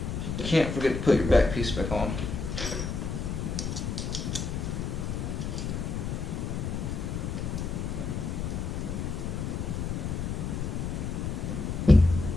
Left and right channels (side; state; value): left; noise; rumble, 2 dB below the sound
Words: can't forget to put your back piece back on.